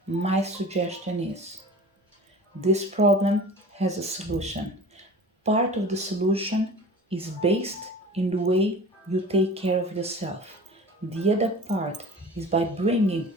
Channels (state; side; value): normal; both; correlation 0.39